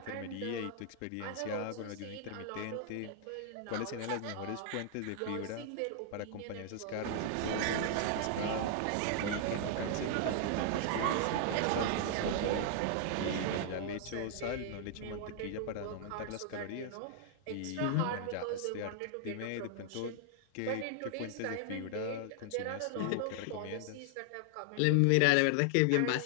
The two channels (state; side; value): different; both; correlation 0.00